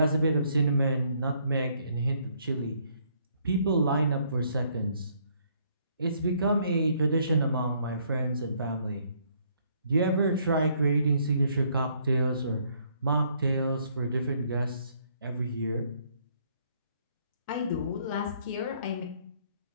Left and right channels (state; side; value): inverted; both; correlation -0.67